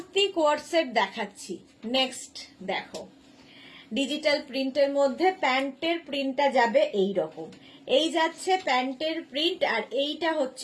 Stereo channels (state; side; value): identical; both; correlation 1.00